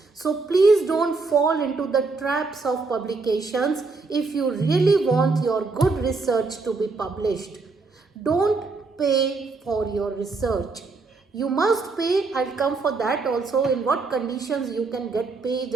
So please don't fall into the traps of publications if you really want your good research to be published. Don't pay for your research. You must pay. I'll come for that also, in what conditions you can get paid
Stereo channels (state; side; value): quieter; left; 4.0 dB